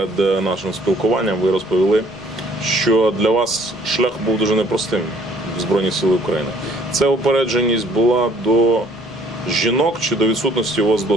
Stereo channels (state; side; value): noise; left; rumble, 25 dB below the sound